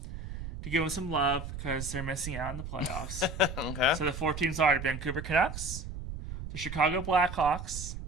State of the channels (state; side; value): noise; right; rumble, 8 dB below the sound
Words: to give them some love because they're missing out on the playoffs. Okay. So the 4 teams are the Vancouver Canucks, the Chicago Blackhawks,